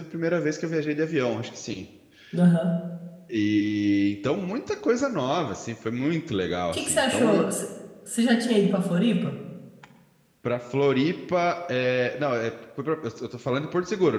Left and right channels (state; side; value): identical; both; correlation 1.00